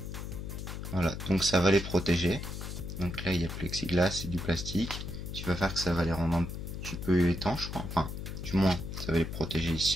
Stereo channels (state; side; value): noise; left; hum, 7 dB below the sound